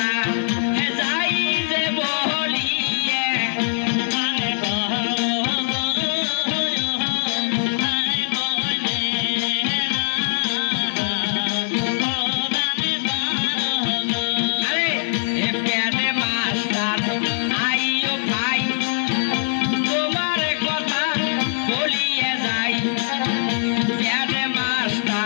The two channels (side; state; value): right; silent; digital silence